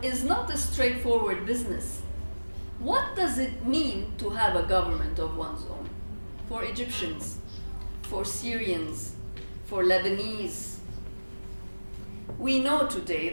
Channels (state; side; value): inverted; both; correlation -1.00